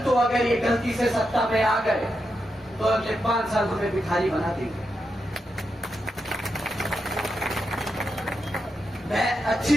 अगर ये गलती से सत्ता में आ गए तो अगले 5 साल हमें भिखारी बना देंगे। मैं अच्छी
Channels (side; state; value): both; normal; correlation 0.86